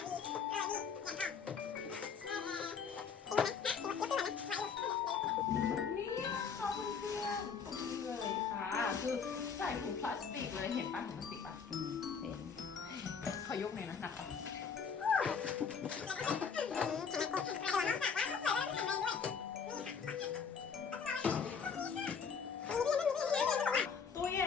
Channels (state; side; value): quieter; right; 6.2 dB